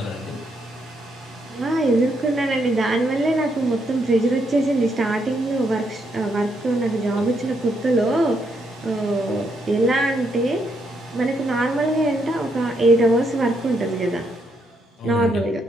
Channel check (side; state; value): both; normal; correlation 0.77